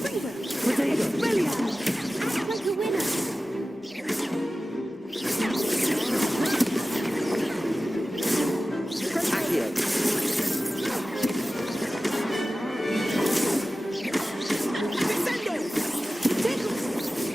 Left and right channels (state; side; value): normal; both; correlation 0.95